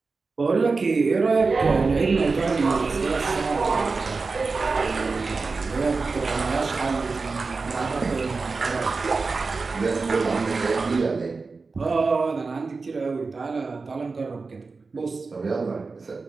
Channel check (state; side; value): quieter; left; 4.2 dB